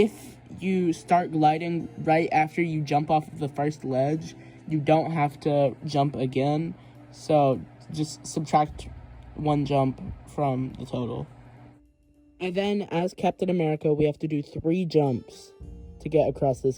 you start gliding right after you jump off of the first ledge, you don't have to jump again, so just subtract one jump from the total. And then, as Captain America, we have to do 3 jumps to get across this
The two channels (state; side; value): identical; both; correlation 1.00